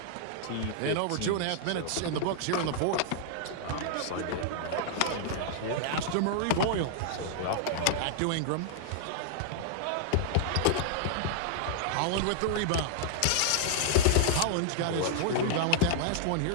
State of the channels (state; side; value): different; both; correlation -0.01